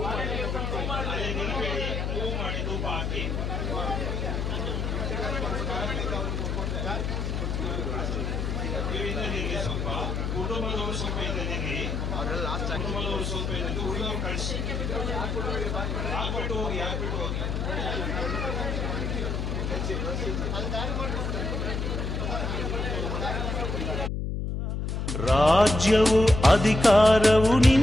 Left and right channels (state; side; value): noise; left; hum, 2 dB below the sound